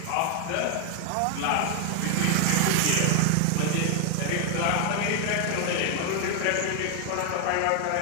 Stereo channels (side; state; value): both; different; correlation 0.00